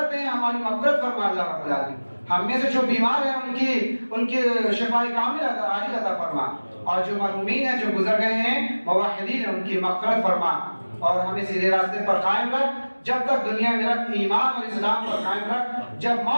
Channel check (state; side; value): inverted; both; correlation -1.00